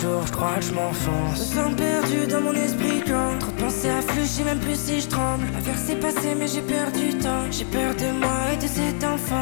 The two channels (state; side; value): silent; right; digital silence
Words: je crois que je m'enfonce. Je me sens perdu dans mon esprit quand trop de pensées affluent, je sais même plus si je tremble. L'affaire s'est passée mais j'ai perdu du temps. J'ai peur de moi et de cet